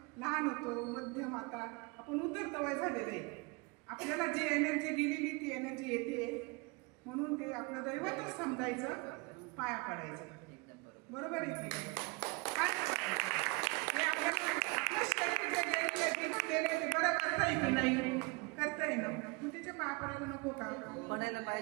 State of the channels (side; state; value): left; quieter; 28.8 dB